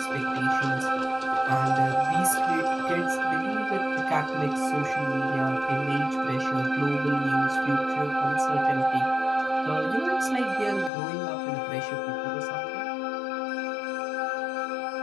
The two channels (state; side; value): drops out; right; at 10.9 s